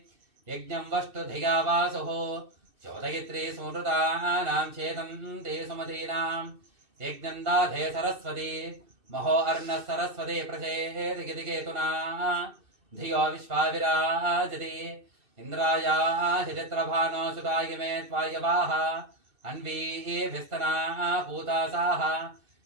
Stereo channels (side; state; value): left; late; 2.6 ms